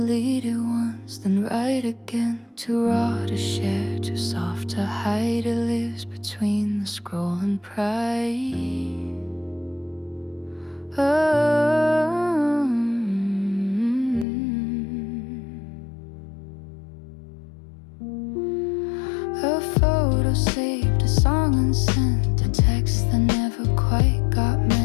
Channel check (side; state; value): right; drops out; at 14.2 s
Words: it once, then write again. Too raw to share, too soft to hide. It lives between the scroll and pride. A photo saved, a song unsent, a text that never quite got